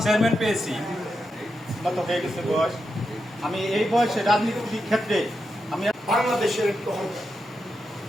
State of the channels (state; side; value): normal; both; correlation 0.86